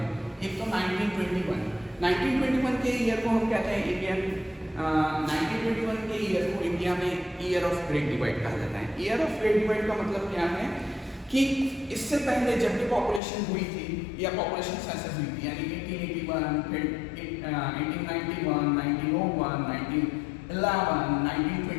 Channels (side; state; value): right; drops out; at 13.2 s